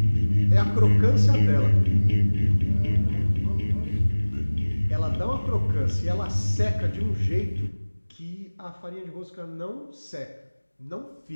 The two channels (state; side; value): inverted; both; correlation -1.00